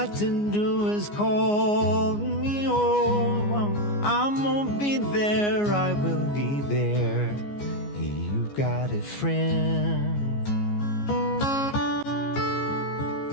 to do is call me. Oh, I'm gonna be there, I will be there. You got a friend,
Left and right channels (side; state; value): right; late; 14 ms